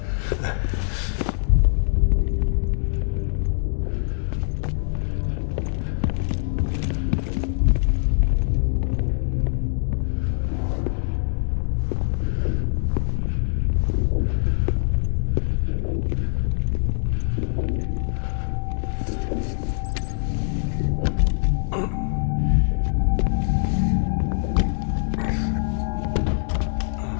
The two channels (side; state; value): right; silent; digital silence